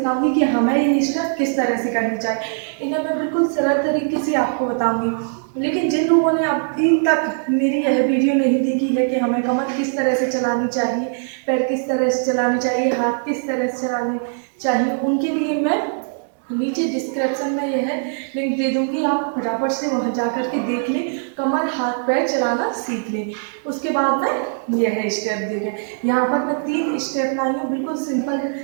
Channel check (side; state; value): left; silent; 65 dB below the other